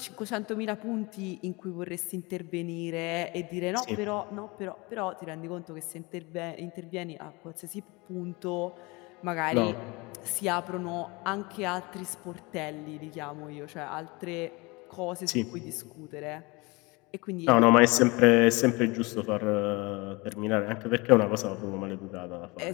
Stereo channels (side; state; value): right; quieter; 25.5 dB